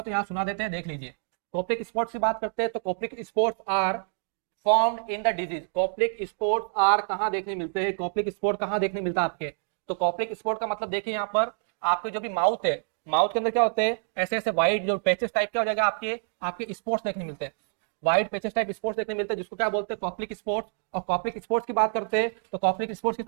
तो यहाँ सुना देते हैं, देख लीजिए। कॉप्लिक स्पोर्ट से बात करते हैं तो Koplik spots are formed in the disease. Koplik spots are कहाँ देखने मिलते हैं? कॉप्लिक स्पोर्ट कहाँ देखने मिलता है आपके? तो कॉप्लिक स्पोर्ट का मतलब देखिए यहाँ पर, आपके जो भी माउथ है, माउथ के अंदर क्या होते हैं? ऐसे ऐसे व्हाइट जो पैचेस टाइप क्या हो जाएगा आपके स्पोर्ट्स देखने मिलते हैं। व्हाइट पेचेस टाइप स्पोर्ट्स देखने मिलते हैं, जिसको क्या बोलते हैं? Koplik sports. और कॉप्लिक स्पोर्ट्स की बात करते हैं तो कॉप्लिक स्पोर्ट्स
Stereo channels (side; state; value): left; silent; digital silence